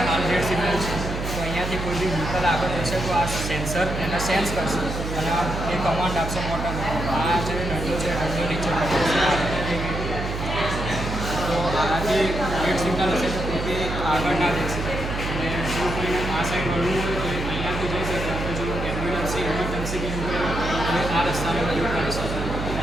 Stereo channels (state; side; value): noise; right; hum, 4 dB below the sound